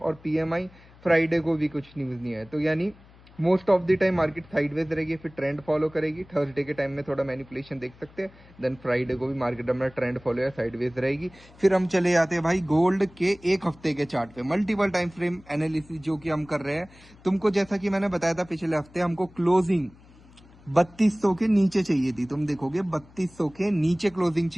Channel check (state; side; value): noise; left; hum, 25 dB below the sound